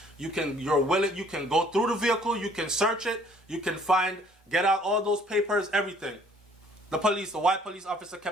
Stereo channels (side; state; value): both; normal; correlation 0.58